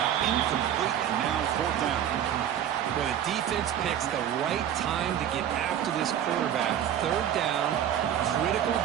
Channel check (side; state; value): left; quieter; 10.2 dB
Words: incomplete, and now 4th down. Well, the defense picks the right time to get after this quarterback. 3rd down, critical